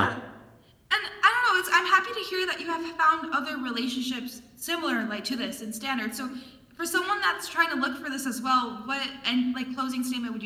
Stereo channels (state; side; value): identical; both; correlation 1.00